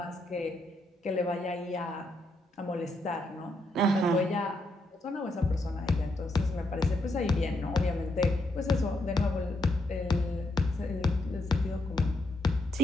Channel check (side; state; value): both; normal; correlation 0.79